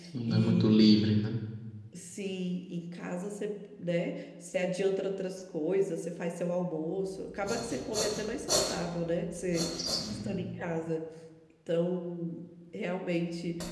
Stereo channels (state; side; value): identical; both; correlation 1.00